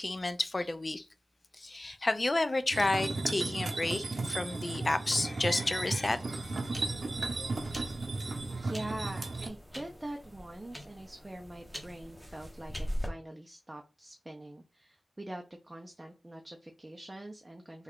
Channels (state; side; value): normal; both; correlation 0.95